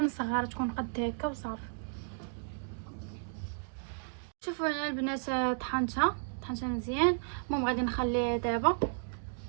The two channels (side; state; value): left; silent; digital silence